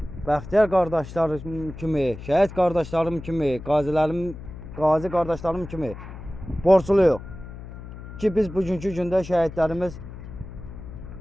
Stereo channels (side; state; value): left; noise; hum, 13 dB below the sound